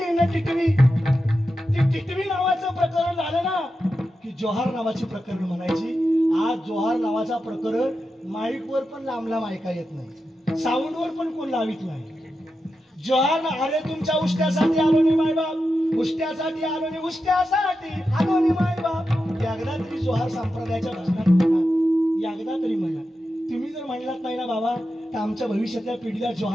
न टिटवी. ती टिटवी नावाचं प्रकरण झालं ना की जोहार नावाची प्रकरण म्हणायची. आज जोहार नावाचा प्रकरण माईकवर पण लांब ऐका येत नाही, साऊंडवर पण कोण लावित नाही. जोहार, अरे तुमच्या उष्ट्यासाठी आलो नाही मायबाप, उष्ट्यासाठी आलो नाही, उष्ट्यासाठी आलो नाही मायबाप. एकदा तरी जोहार संप्रदायाच्या भजनात म्हणा, एकदा तरी म्हणा. तुम्ही जर म्हणलात नाही ना बाबा तर आमच्या भविष्यातल्या पिढीला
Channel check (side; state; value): both; normal; correlation 0.89